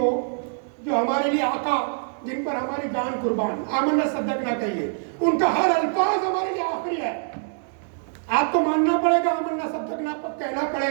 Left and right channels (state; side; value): silent; left; 62 dB below the other